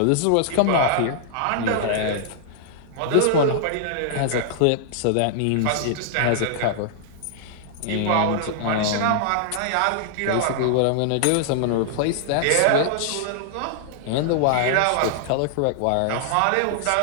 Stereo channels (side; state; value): both; different; correlation -0.01